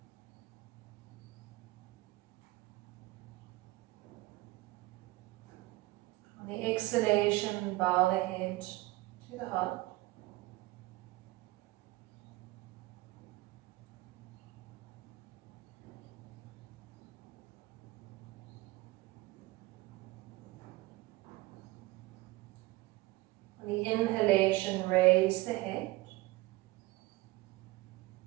On the exhalation, bow the head to the heart. On the inhalation, raise the head,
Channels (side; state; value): left; quieter; 20.0 dB